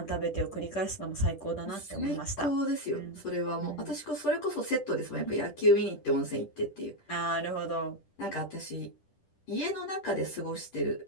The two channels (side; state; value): right; late; 10 ms